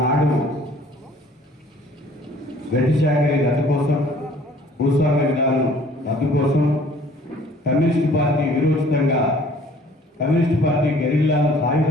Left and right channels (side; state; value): both; normal; correlation 0.54